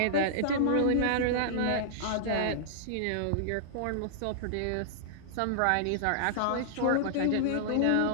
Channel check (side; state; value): both; different; correlation -0.01